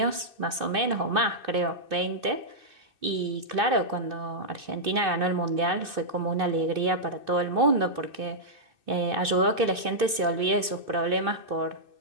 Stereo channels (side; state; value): left; late; 2.6 ms